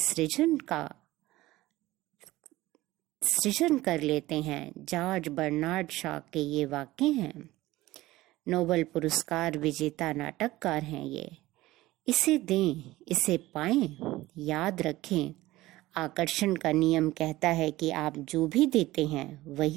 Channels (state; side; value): quieter; left; 17.6 dB